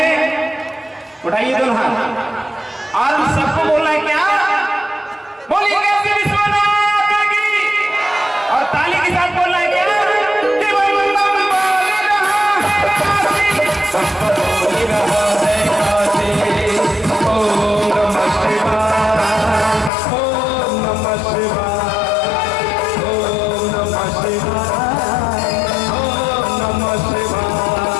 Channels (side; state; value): right; drops out; at 19.9 s